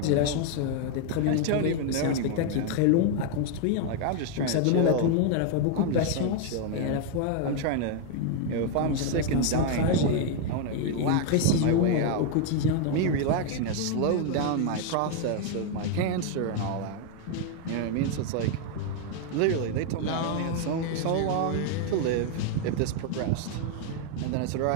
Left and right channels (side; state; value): both; different; correlation 0.00